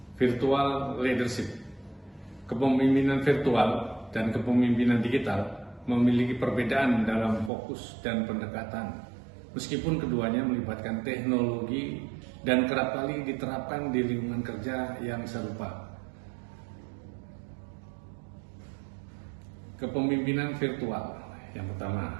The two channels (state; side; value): drops out; left; at 7.5 s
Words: Virtual leadership. Kepemimpinan virtual dan kepemimpinan digital memiliki perbedaan dalam fokus dan pendekatan. Meskipun keduanya melibatkan teknologi dan kerap kali diterapkan di lingkungan kerja yang serupa. Kepemimpinan virtual. Yang pertama,